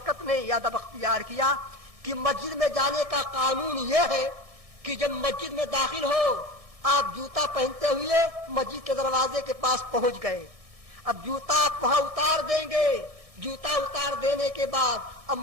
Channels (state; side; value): late; left; 1.6 ms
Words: نے یہ ادب اختیار کیا کہ مسجد میں جانے کا قانون یہ ہے کہ جب مسجد میں داخل ہو آپ جوتا پہنتے ہوئے مسجد کے دروازے کے پاس پہنچ گئے، اب جوتا آپ وہاں اتار دیں گے، جوتا اتار دینے کے بعد اب